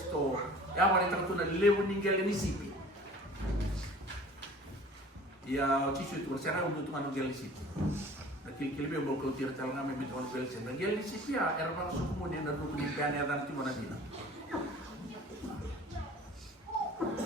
ya wale tatu na lewo ningele ni sipi ya Gesù tu bersara untuk tu ngel sipi na kilbe mo ko tira tal ngame mi ton pel sen ngel sipi ya era bang su mo ne na du ni gane dan ti mana dina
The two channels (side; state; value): both; normal; correlation 0.46